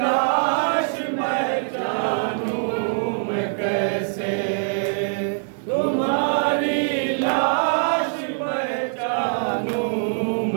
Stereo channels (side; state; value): left; silent; digital silence